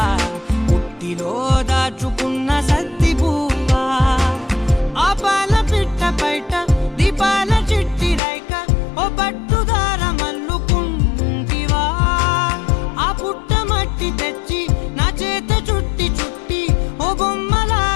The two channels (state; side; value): drops out; right; at 8.2 s